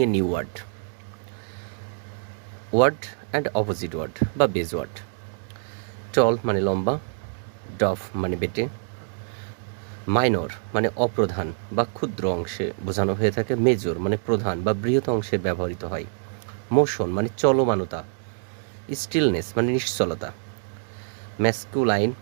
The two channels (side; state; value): left; silent; digital silence